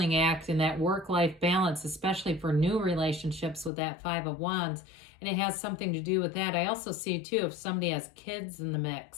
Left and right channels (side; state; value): right; drops out; at 3.7 s